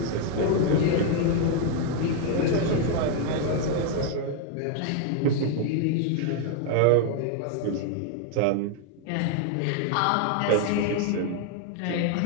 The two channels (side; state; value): both; different; correlation 0.00